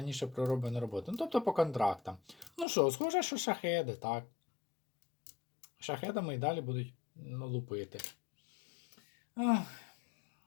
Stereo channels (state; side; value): drops out; right; at 2.7 s